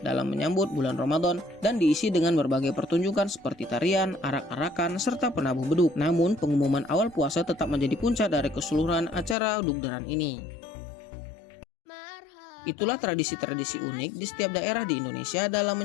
dalam menyambut bulan Ramadan dan diisi dengan berbagai pertunjukan seperti tarian, arak-arakan, serta penabuh beduk. Namun pengumuman awal puasa tetap menjadi puncak dari keseluruhan acara Dugderan ini. Itulah tradisi-tradisi unik di setiap daerah di Indonesia dalam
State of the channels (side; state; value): right; drops out; at 9.3 s